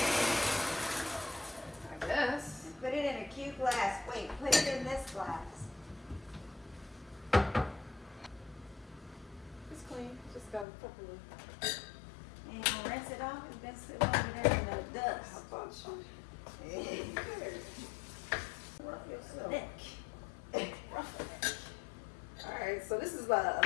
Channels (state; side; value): drops out; right; at 10.7 s